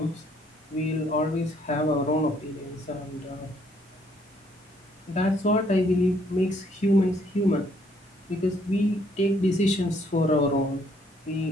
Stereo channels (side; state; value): both; normal; correlation 0.67